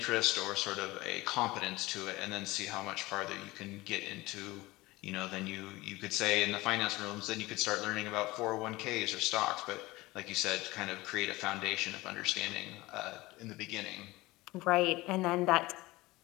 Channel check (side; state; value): right; quieter; 20.2 dB